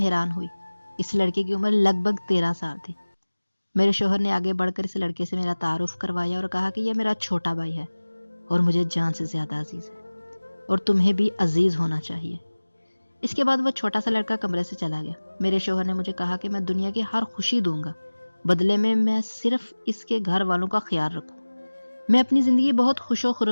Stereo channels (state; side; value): inverted; both; correlation -1.00